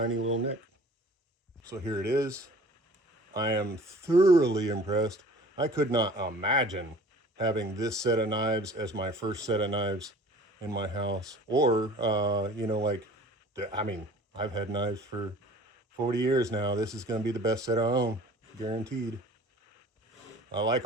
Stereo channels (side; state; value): both; normal; correlation 0.47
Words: little nick. So here it is. I am thoroughly impressed. I could not imagine having this set of knives as my first set of knives in my house. Or, you know, like, I mean, I've had knives for 40 years now. This is going to be the best set I own, guaranteed. I like